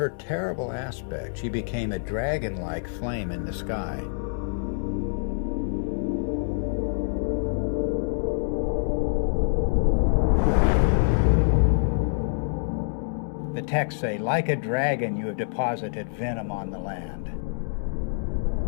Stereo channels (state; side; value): silent; right; digital silence